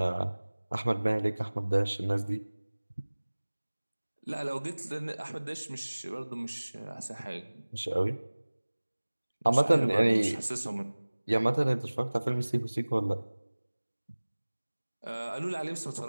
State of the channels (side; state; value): both; inverted; correlation -1.00